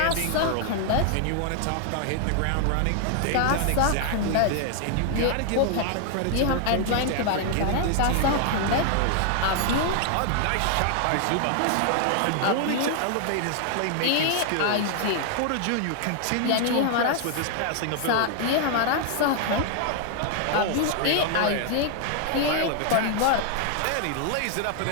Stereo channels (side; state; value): both; different; correlation 0.00